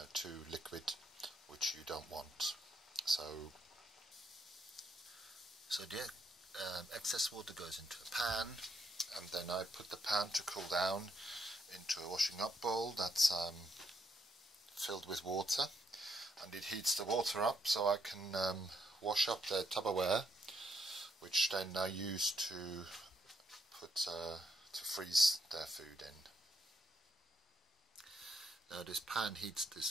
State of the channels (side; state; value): both; normal; correlation 0.75